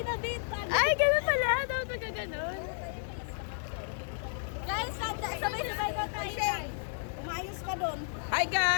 in a bit. Ay, ganun pala. Dapat magkaganon. Guys, sabay-sabay na tayo. Guys. Umayos ka doon. Hi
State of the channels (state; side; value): silent; right; 56 dB below the other